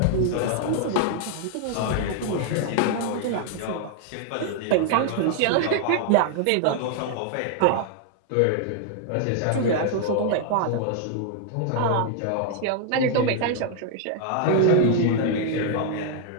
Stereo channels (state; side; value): different; both; correlation 0.00